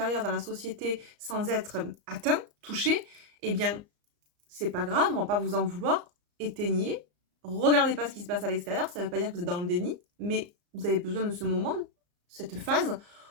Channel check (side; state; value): left; late; 34 ms